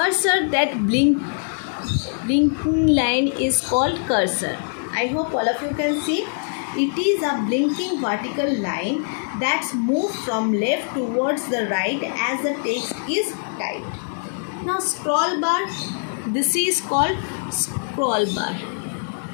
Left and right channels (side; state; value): right; silent; 64 dB below the other